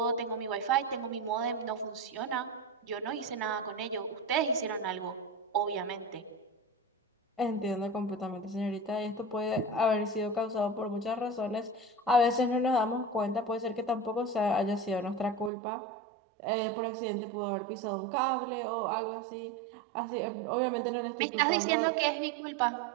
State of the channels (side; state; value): left; drops out; at 15.5 s